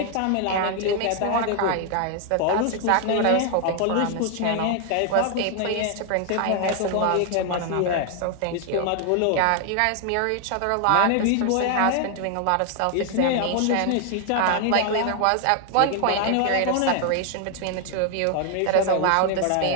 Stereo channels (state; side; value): different; both; correlation 0.00